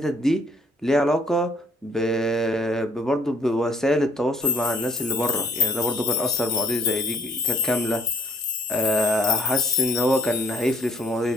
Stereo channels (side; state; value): both; normal; correlation 0.61